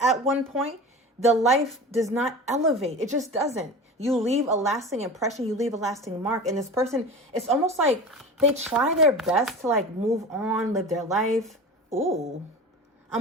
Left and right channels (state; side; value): normal; both; correlation 0.33